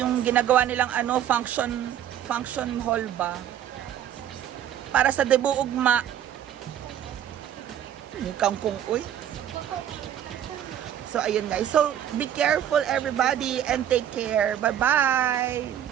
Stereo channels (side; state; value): left; quieter; 10.3 dB